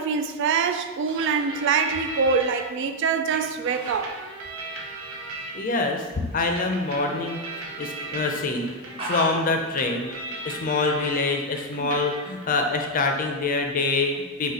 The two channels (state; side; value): normal; both; correlation -0.02